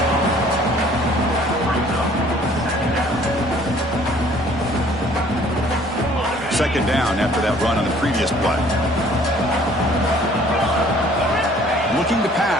Second down after that run on the previous play. Looking to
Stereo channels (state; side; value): normal; both; correlation 0.56